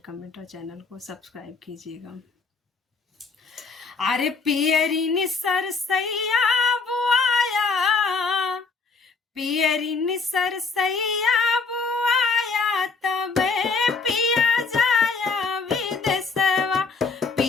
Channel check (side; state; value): right; quieter; 4.5 dB